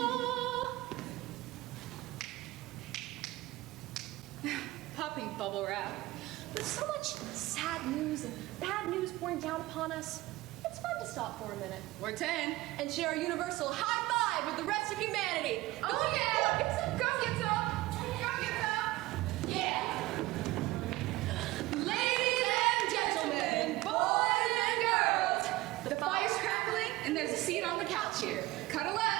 Popping bubble wrap. With so much sad news and bad news pouring down upon us, it's fun to stop for a minute. Or 10. And share a universal high five with the rest of humanity. Oh yeah! Come get some! Come get some! Yeah! Ladies and gentlemen, boys and girls, the fire's crackling and there's a seat on the couch here. Cuddle up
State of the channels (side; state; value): left; quieter; 19.0 dB